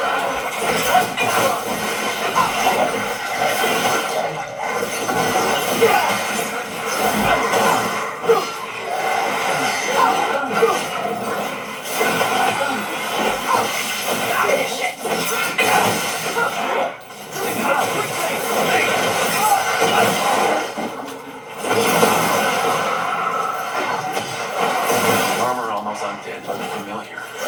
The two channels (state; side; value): identical; both; correlation 1.00